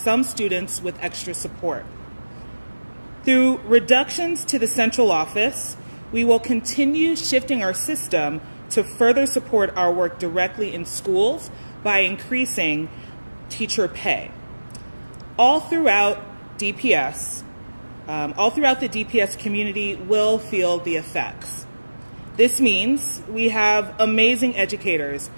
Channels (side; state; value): both; inverted; correlation -1.00